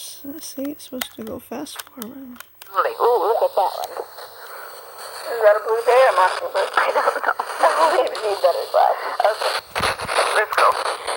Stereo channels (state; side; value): identical; both; correlation 1.00